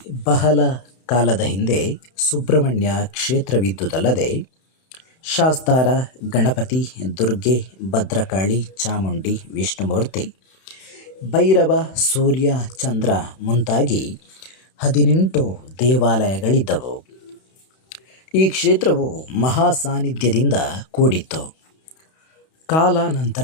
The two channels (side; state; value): right; late; 31 ms